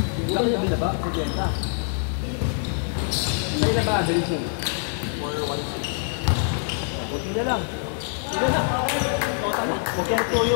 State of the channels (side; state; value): right; silent; 62 dB below the other